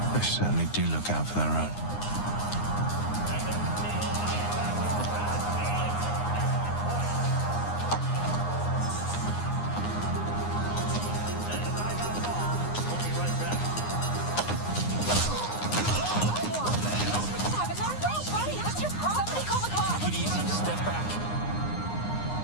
They certainly do look out for their own. Take it easy. Step back.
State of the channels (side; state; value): right; late; 9.7 ms